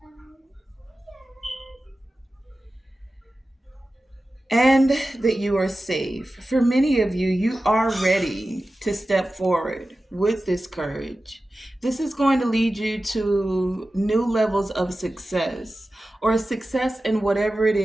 and that you are safe. For many of you, you are ready to step forward with this courage. This is going to lead you to new levels of success or success in whatever it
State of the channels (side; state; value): both; normal; correlation 0.94